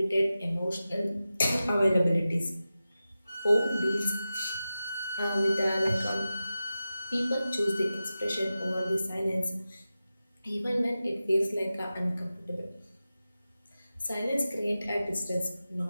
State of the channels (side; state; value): both; inverted; correlation -0.93